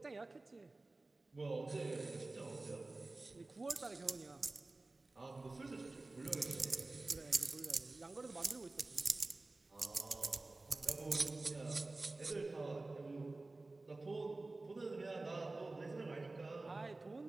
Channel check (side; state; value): left; quieter; 3.2 dB